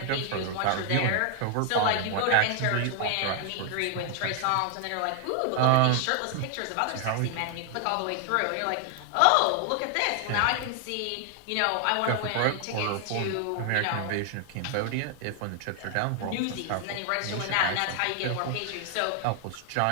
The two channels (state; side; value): different; both; correlation 0.00